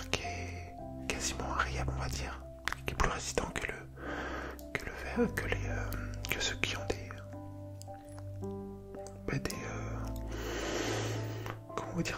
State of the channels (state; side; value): identical; both; correlation 1.00